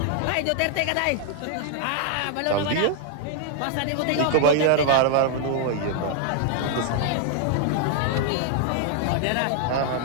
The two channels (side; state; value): both; different; correlation 0.00